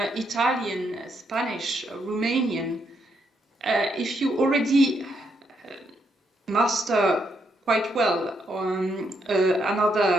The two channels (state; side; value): normal; both; correlation 0.77